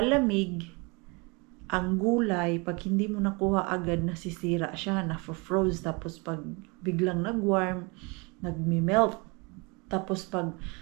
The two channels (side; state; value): left; quieter; 28.9 dB